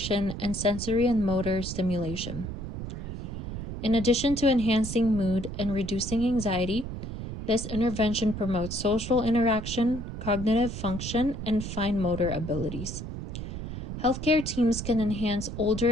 and sensory and motor stimulation. In addition to enhancing mood and reducing anxiety, this intervention promotes social interaction, cognitive function, and fine motor abilities. Healthcare teams can enhance older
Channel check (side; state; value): right; noise; rumble, 7 dB below the sound